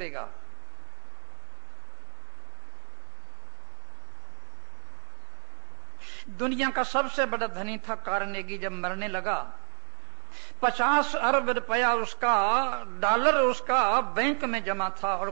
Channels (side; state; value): left; quieter; 37.7 dB